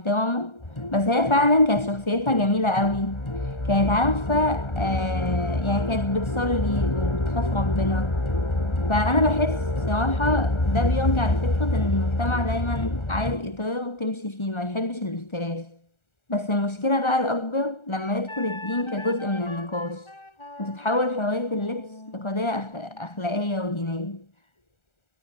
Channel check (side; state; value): right; late; 1.4 ms